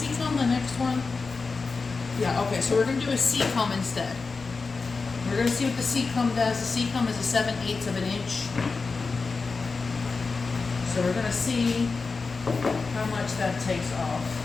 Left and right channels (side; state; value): right; quieter; 4.3 dB